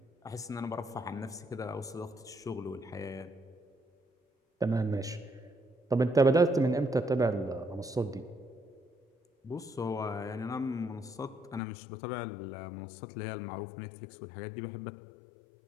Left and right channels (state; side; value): drops out; right; at 11.6 s